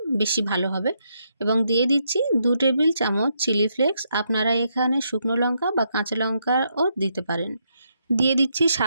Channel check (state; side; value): inverted; both; correlation -0.78